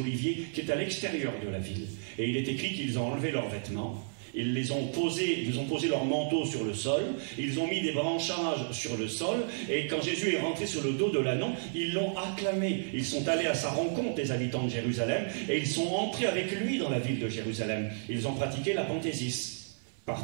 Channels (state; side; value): silent; left; 57 dB below the other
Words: qui est à l'extérieur de la ville. Et il est écrit qu'ils ont enlevé leurs vêtements. Ils ont posé leur manteau sur le sol, ils ont mis des branchages sur le sol, et quand Jésus est rentré sur le dos de l'ânon, ils l'ont acclamé. Ils sont allés à sa rencontre, les habitants de Jérusalem, et ils sont entrés avec lui dans la ville de Jérusalem. Ils ont pratiqué l'apanthésis,